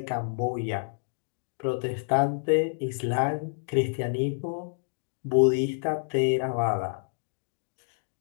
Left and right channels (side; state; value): right; silent; digital silence